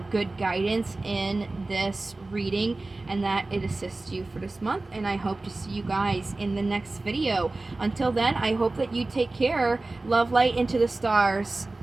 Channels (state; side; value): quieter; left; 3.1 dB